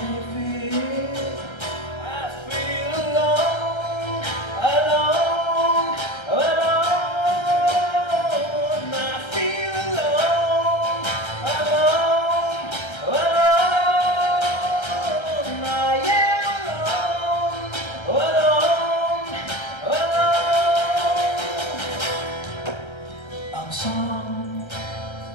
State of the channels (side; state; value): right; late; 1.3 ms